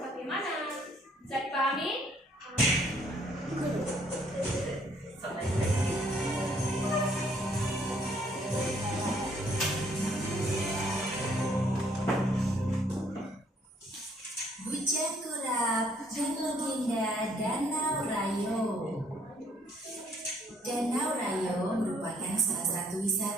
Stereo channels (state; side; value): normal; both; correlation 0.65